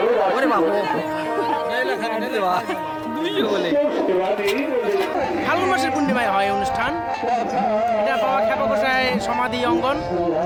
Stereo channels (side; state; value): both; identical; correlation 1.00